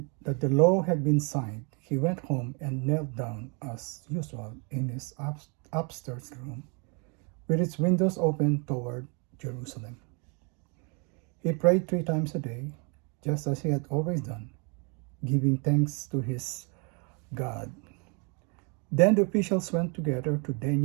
that the law had been signed, he went home and knelt down as usual in his upstairs room, with its windows open toward Jerusalem. He prayed 3 times a day, just as he had always done, giving thanks to his God. Then the officials went together to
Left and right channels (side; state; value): left; quieter; 34.8 dB